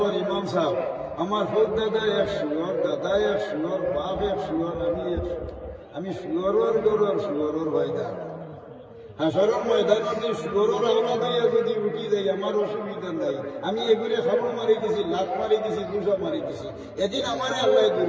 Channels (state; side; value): identical; both; correlation 1.00